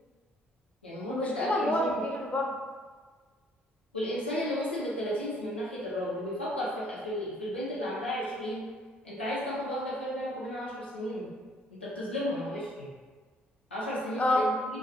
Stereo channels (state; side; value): normal; both; correlation 0.62